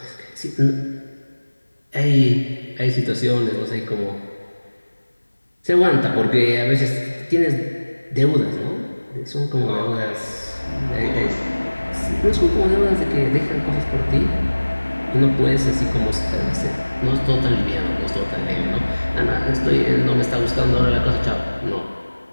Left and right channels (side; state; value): both; inverted; correlation -1.00